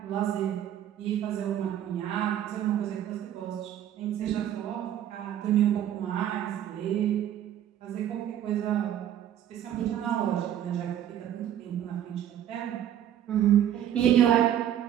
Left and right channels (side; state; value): left; quieter; 10.8 dB